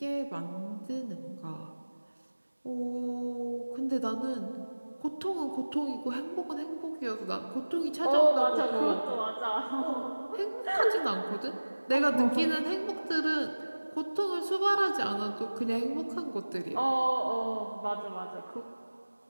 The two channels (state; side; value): inverted; both; correlation -1.00